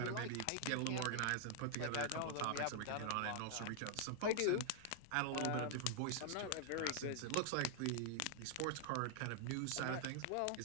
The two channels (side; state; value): both; different; correlation 0.00